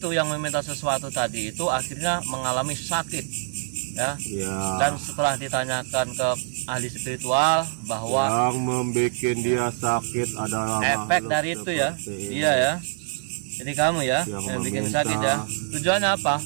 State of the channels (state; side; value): silent; left; 62 dB below the other